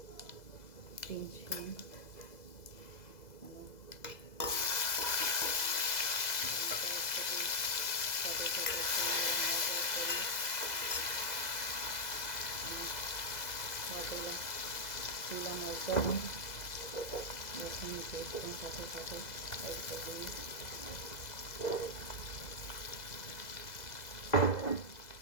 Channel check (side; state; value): right; late; 2.0 ms